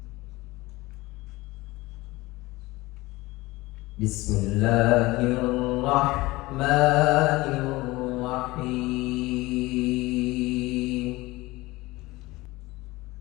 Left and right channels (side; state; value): right; quieter; 20.4 dB